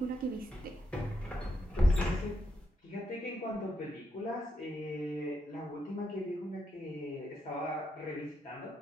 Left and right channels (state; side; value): normal; both; correlation 0.81